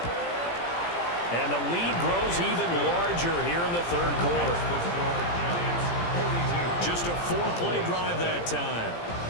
And the lead grows even larger here in the third quarter. Just a 4-play drive that time.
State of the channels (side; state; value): right; late; 17 ms